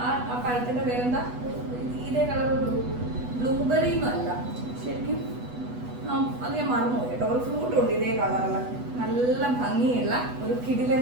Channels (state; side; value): late; left; 8.1 ms